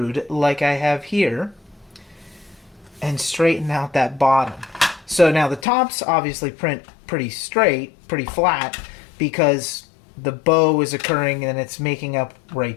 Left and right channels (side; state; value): right; drops out; at 5.7 s